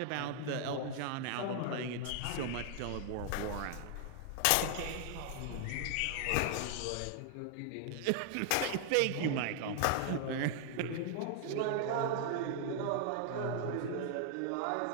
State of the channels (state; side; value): different; both; correlation 0.00